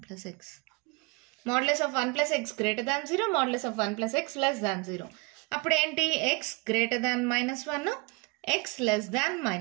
plus x, modulus of 1 plus X greater than 0, modulus of 1 plus X less దాన్ 0. అప్పుడు ఏంటి, x greater than -1, x less than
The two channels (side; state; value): left; quieter; 27.9 dB